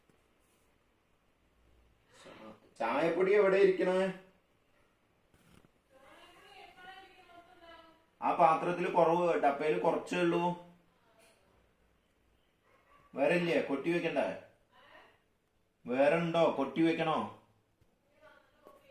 ചായപ്പൊടി എവിടെ ഇരിക്കണേ? ആ പാത്രത്തിൽ കുറവ്, ഡപ്പയിൽ കുറച്ചേ ഉള്ളൂ. വേറെ ഇല്ലേ? കൊട്ടി വെക്കണ്ടേ? വേറെ ഉണ്ടോ? കൊട്ടി വെക്കണോ?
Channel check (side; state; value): both; identical; correlation 1.00